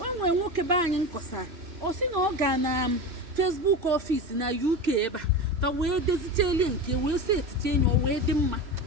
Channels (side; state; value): left; late; 3.0 ms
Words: o nwere nwoke be anyị nkọsa o si na ọ ga na Facebook office na UK ebe a ka wee dezicheli nke wee si etiche enyi o wee dị mma